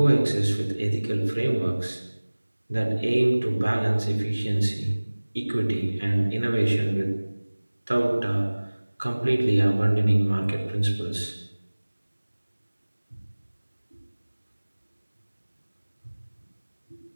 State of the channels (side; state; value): both; inverted; correlation -1.00